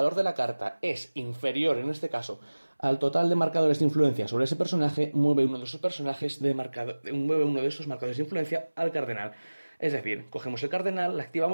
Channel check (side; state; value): both; inverted; correlation -1.00